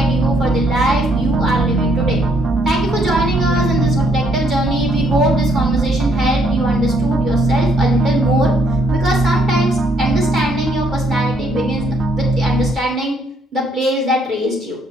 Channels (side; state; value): both; normal; correlation 0.69